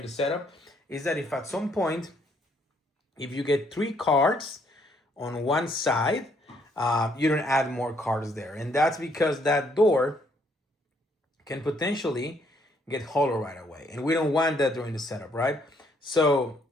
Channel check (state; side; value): normal; both; correlation 0.69